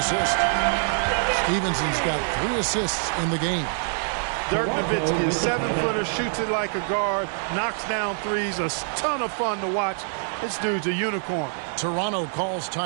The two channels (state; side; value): silent; left; digital silence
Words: assist. Stevenson's got 3 assists in the game. Dirk Nowitzki, a 7-footer, shoots it like a guard, knocks down threes, a ton of fun to watch. This dude's a unicorn. Toronto calls